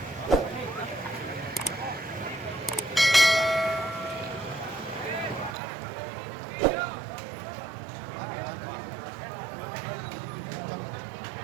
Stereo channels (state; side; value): drops out; left; at 5.6 s